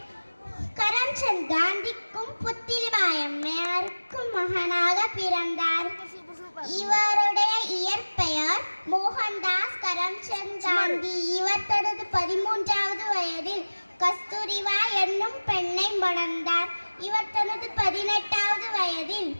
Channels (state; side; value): inverted; both; correlation -1.00